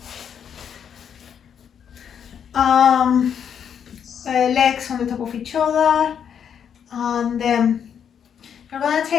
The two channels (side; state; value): right; quieter; 8.1 dB